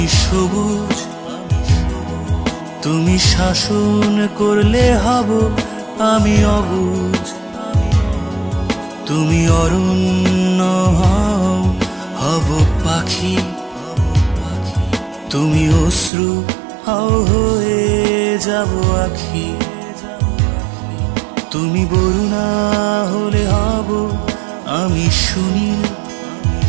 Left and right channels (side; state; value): left; drops out; at 16.1 s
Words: সবুজ, তুমি শাসন করলে হব আমি অবুঝ, তুমি অরণ্য হব পাখি, তুমি অশ্রু হয়ে যাব আখি, তুমি বরুণা হলে হব আমি সুনীল,